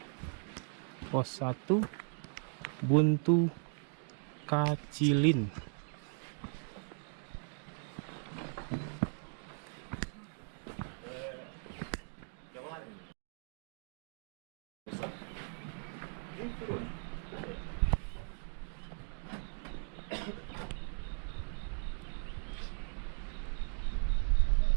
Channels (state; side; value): silent; left; 53 dB below the other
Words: Pos 1 Buntu Kacilin.